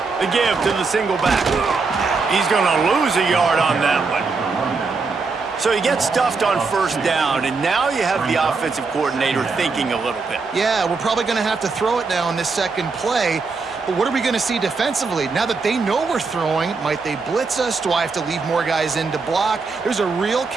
The give to the single back. He's going to lose a yard on that one. So he gets stuffed on 1st down, and now you have the offensive coordinator thinking a little bit. Yeah, we're probably going to have to throw it now in this second play. But what are we going to see defensively? Now that they know we're throwing, might they blitz us? Do I have to leave more guys in to block? There's a real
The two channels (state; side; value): quieter; left; 4.4 dB